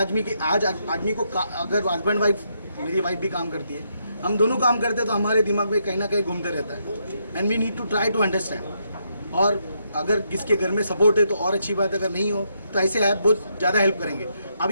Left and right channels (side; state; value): both; inverted; correlation -0.78